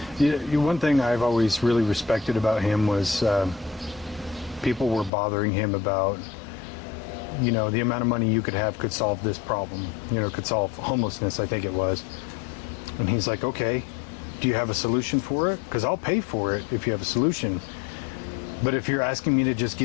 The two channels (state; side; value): drops out; right; at 5.1 s